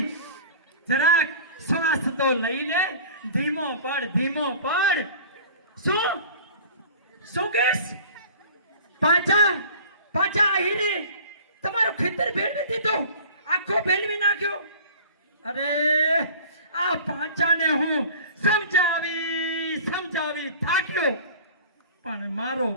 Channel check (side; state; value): both; inverted; correlation -0.43